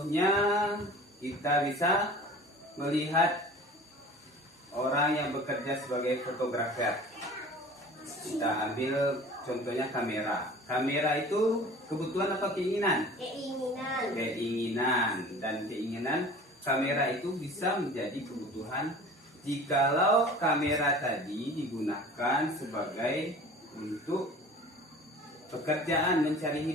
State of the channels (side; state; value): both; normal; correlation 0.43